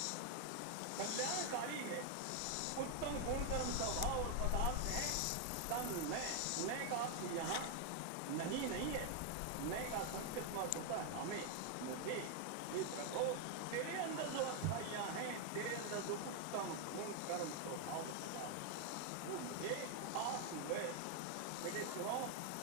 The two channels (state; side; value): different; both; correlation 0.01